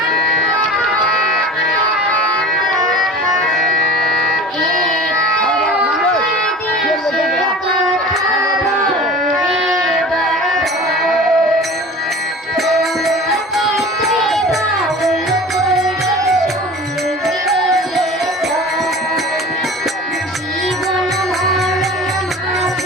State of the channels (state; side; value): normal; both; correlation 0.39